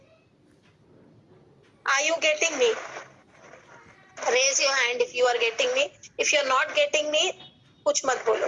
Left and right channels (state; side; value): identical; both; correlation 1.00